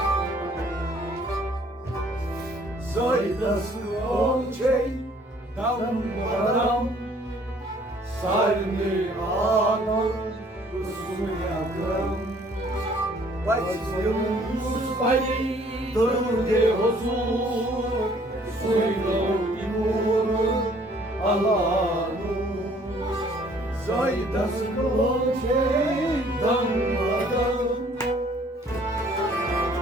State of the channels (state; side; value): normal; both; correlation 0.59